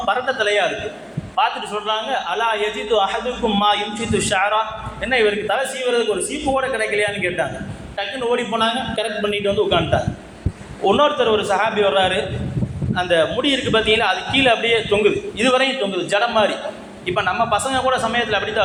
பரட்ட தலையாக இருக்குது. பார்த்துட்டு சொல்கிறாங்க, அலா யஜிது அஹதுக்கும் மா யும்சித்து ஷாரா, என்ன இவருக்கு தலை சீவுறதுக்கு ஒரு சீப்பு கூட கிடைக்கலையான்னு கேட்டாங்க. டக்குன்னு ஓடி போனாங்க, கரெக்ட் பண்ணிட்டு உட்காந்துட்டாங்க. இன்னொருத்தர் ஒரு சஹாபி வர்றாரு, அந்த முடி இருக்குது பார்த்தீங்கன்னா, அது கீழே அப்படியே தொங்குது, இதுவரையும் தொங்குது, ஜடம் மாதிரி. இப்போ நம்ம பசங்க கூட சமயத்தில் அப்படி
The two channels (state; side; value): identical; both; correlation 1.00